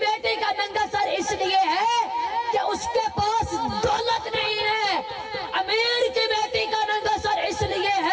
بیٹی کا ننگا سر اس لیے ہے کہ اس کے پاس دولت نہیں ہے، امیر کی بیٹی کا ننگا سر اس لیے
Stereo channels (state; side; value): identical; both; correlation 1.00